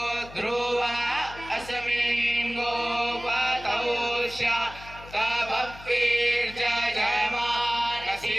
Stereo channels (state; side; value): noise; left; hum, 17 dB below the sound